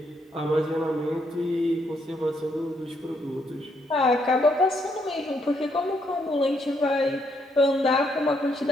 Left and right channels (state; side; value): normal; both; correlation 0.74